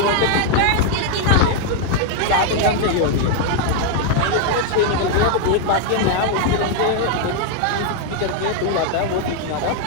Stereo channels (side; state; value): both; different; correlation 0.00